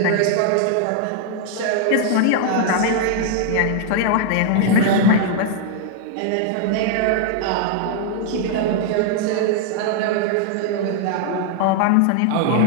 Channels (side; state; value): both; different; correlation 0.00